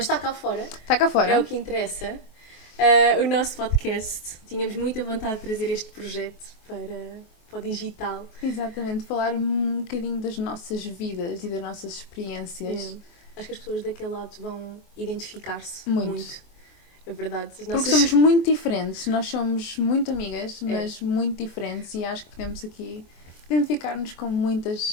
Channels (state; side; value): late; right; 24 ms